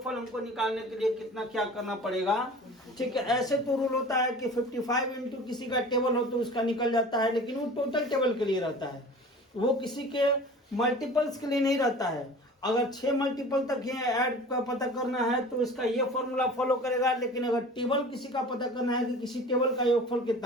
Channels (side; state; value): both; normal; correlation 0.41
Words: हमको निकालने के लिए कितना क्या करना पड़ेगा, ठीक है। ऐसे तो रूल होता है कि 55 इंटू किसी का टेबल हो तो उसका निकल जाता है, लेकिन वो टोटल टेबल के लिए रहता है, वो किसी के मल्टीपल्स के लिए नहीं रहता है। अगर 6 मल्टीपल तक ये ऐड का पता करना है तो इसका ये फॉर्मूला फॉलो करेगा, लेकिन अगर टेबल किसी का पता करना है कि किसी टेबल का योगफल